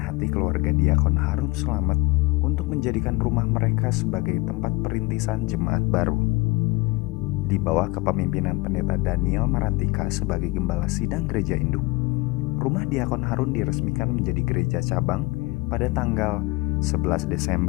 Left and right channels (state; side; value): quieter; right; 23.1 dB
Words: keluarga diakon Harun Slamet untuk menjadikan rumah mereka sebagai tempat perintisan jemaat baru. Di bawah kepemimpinan Pendeta Daniel Marantika sebagai Gembala Sidang Gereja Induk, rumah diakon Harun diresmikan menjadi gereja cabang pada tanggal 11